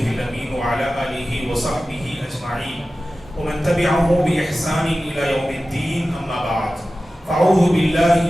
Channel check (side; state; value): both; normal; correlation 0.95